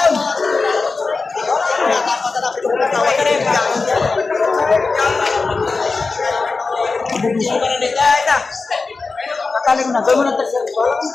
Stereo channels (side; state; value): right; quieter; 4.1 dB